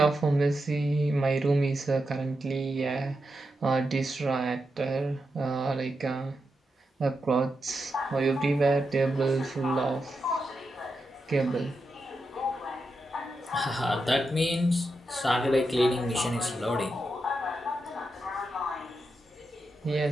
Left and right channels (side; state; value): both; normal; correlation 0.87